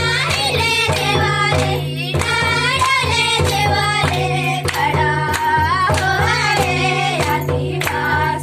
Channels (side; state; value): both; identical; correlation 1.00